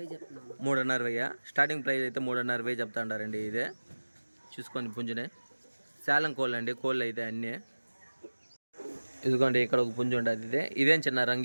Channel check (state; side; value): inverted; both; correlation -1.00